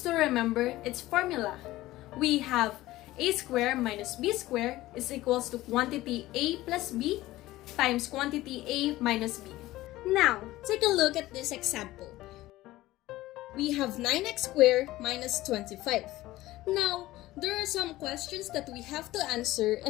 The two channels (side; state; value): right; quieter; 17.0 dB